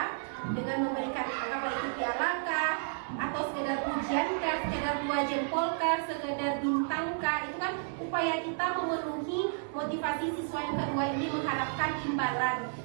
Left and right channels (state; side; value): silent; left; digital silence